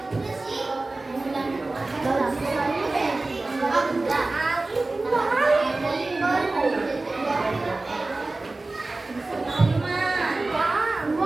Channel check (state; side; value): quieter; left; 3.2 dB